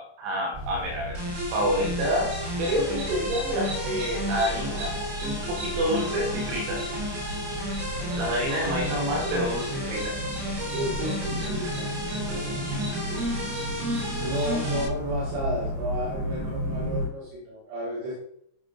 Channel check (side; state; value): left; late; 29 ms